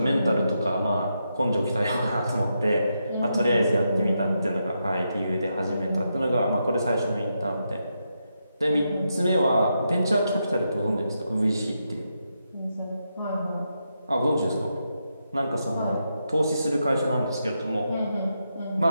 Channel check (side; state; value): both; inverted; correlation -0.84